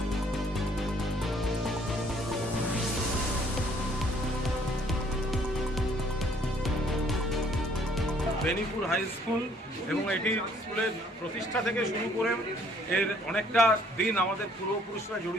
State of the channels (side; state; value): both; normal; correlation 0.62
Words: বেনিপুর হাই স্কুল এবং এটি স্কুলের প্রতিষ্ঠা থেকে শুরু করে এর অনেকটা দিন আমাদের পূর্বপুরুষরা